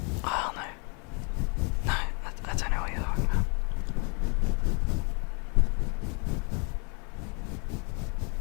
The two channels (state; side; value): quieter; right; 35.4 dB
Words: Oh no. No, I don't know what you're talking about.